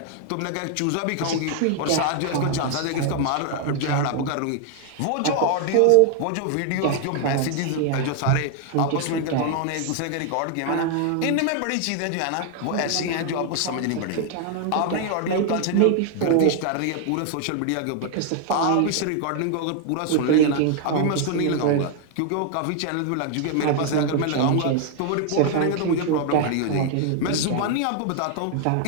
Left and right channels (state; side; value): different; both; correlation 0.00